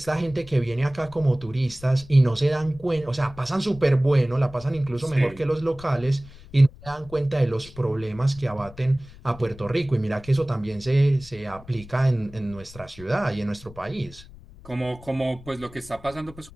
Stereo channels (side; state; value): left; noise; rumble, 19 dB below the sound